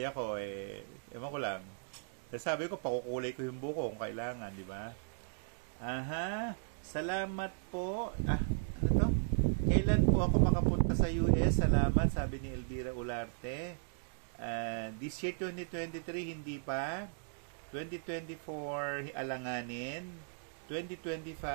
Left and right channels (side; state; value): left; silent; digital silence